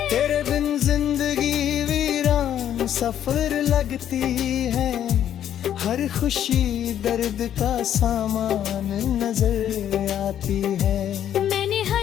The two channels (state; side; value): quieter; right; 10.4 dB